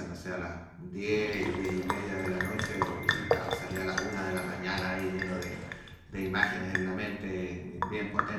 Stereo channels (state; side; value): identical; both; correlation 1.00